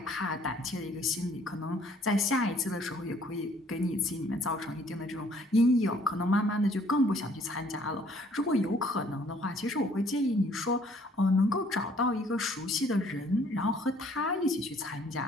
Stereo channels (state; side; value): normal; both; correlation 0.60